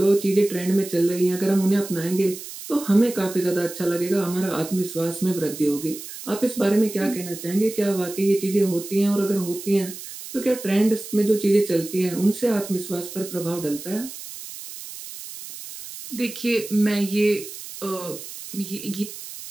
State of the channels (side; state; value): right; noise; hiss, 12 dB below the sound